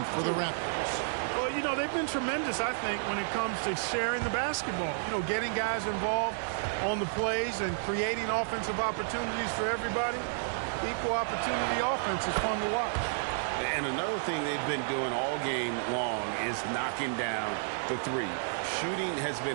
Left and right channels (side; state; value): left; silent; digital silence